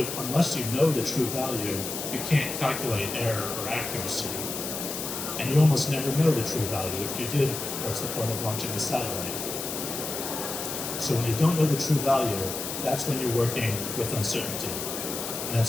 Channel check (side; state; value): left; noise; hiss, 5 dB below the sound